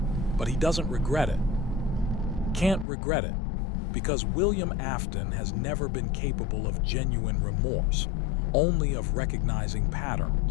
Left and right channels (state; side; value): drops out; right; at 2.9 s